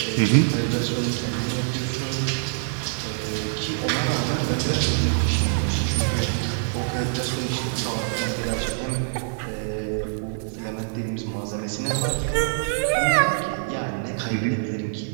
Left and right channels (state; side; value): silent; left; digital silence